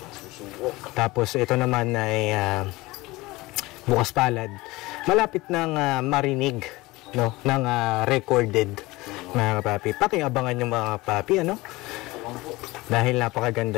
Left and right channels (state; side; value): quieter; right; 21.0 dB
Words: Tapos ito naman ay Bukas Palad. Malapit ng marinig, no, ng recorded, mga kapapi. Pakiabangan yung mga kapapi, ano? Dahil